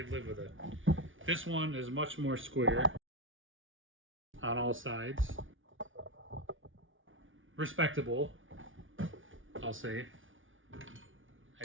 live with it. This one is much more square on all sides. Respectable, I'll say. I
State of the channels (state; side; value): late; left; 0.57 ms